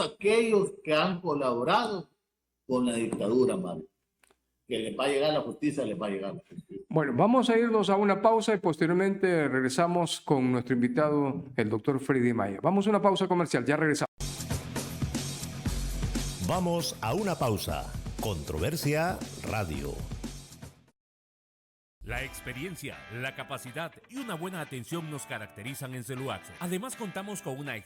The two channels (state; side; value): identical; both; correlation 1.00